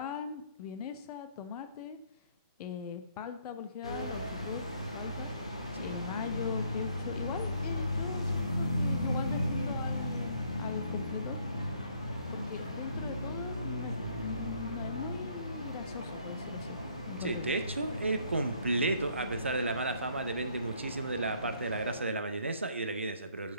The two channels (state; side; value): inverted; both; correlation -0.65